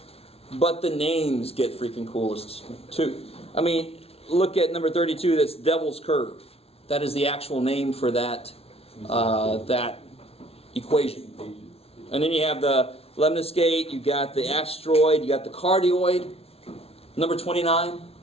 but the names get freaking coolest too. I mean, look at number 32. That's Devil's Curve. That is the actual name for that that equation. And then you have the lemniscate. You got the asteroid. You got the cardioid. Number 29.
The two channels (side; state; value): right; late; 0.29 ms